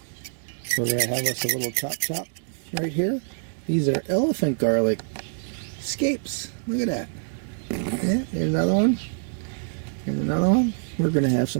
We're going to have us a little chop right here. These are elephant garlic scapes. Look at that. Yeah, there's another one. There's another one. We're going to have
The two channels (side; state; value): left; silent; digital silence